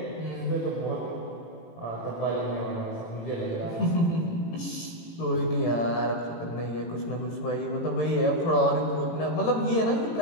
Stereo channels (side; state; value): right; late; 18 ms